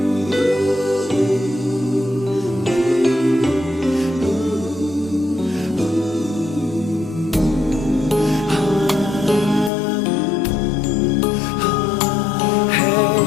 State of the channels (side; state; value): right; drops out; at 9.7 s